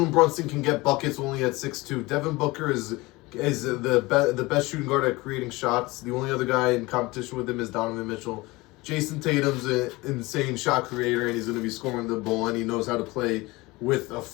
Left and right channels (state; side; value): quieter; right; 22.0 dB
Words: Brunson can get buckets only at 6'2". Devin Booker is the best shooting guard at creating shots. The only other guy in competition with him is Donovan Mitchell. Jason Tatum's an insane shot creator, and he's going to be scoring the ball, and he knows how to play with a